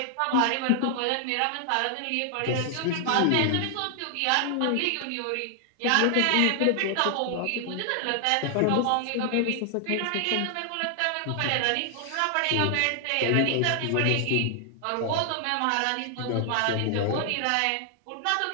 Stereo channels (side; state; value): both; different; correlation 0.00